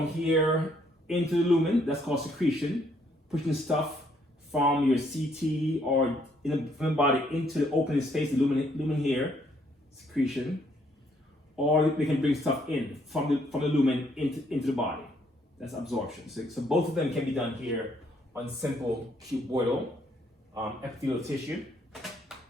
here into the lumen. That's called secretion, pushing stuff from your CT or in the body into the opening space, the lumen here, secretion, or they can bring stuff in from the lumen into the body. That's absorption. So both of them can be done here on simple cuboidal epithelial tissue.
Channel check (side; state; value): both; normal; correlation 0.69